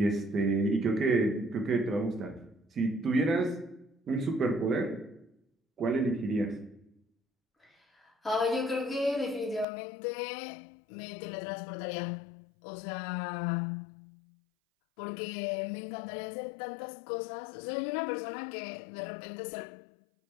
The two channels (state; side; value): drops out; right; at 9.7 s